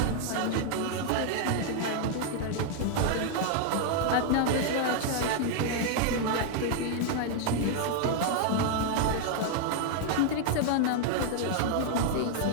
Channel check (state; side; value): different; both; correlation 0.00